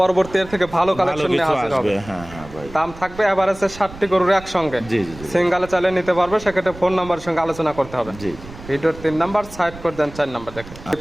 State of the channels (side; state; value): right; noise; rumble, 16 dB below the sound